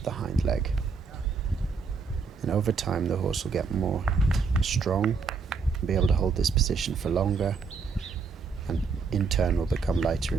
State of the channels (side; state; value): left; quieter; 5.1 dB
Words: the hind leg. And over time, the horse will get more strong and be able to hold this position for longer, and in turn will become lighter